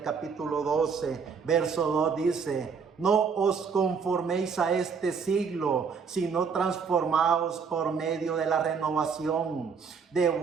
capítulo 12, verso 2 dice: no os conforméis a este siglo, sino transformaos por medio de la renovación de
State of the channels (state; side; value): quieter; left; 5.9 dB